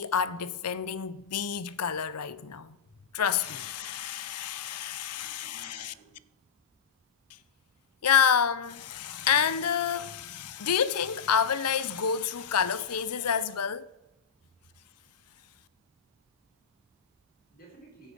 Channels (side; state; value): right; quieter; 7.3 dB